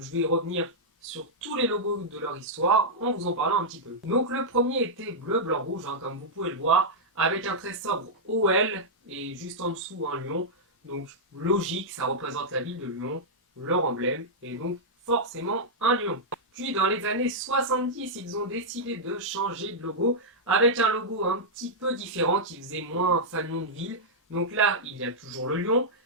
je vais revenir sur tous les logos de leur histoire en vous en parlant un petit peu. Donc le premier était bleu, blanc, rouge, comme vous pouvez le voir, avec un très sobre OL et juste en dessous un lion. Donc logique, ça représente la ville de Lyon, leur emblème, et donc forcément un lion. Puis dans les années 70, ils ont décidé de changer de logo avec un logo un petit peu différent qui faisait moins fanion de ville. Donc là, il y a toujours le lion,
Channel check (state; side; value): normal; both; correlation -0.08